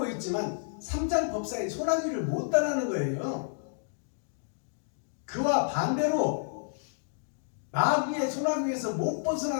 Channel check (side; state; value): right; silent; digital silence